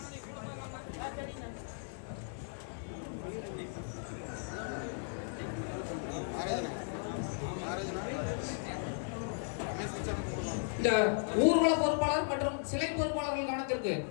இந்த ஊர்வல பொறுப்பாளர் மற்றும் சிலை பொறுப்பாளர்கள் கவனத்திற்கு,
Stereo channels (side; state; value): right; silent; 54 dB below the other